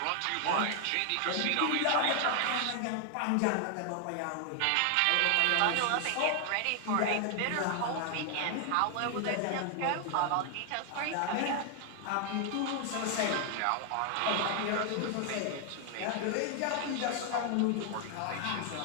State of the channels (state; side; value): different; both; correlation 0.00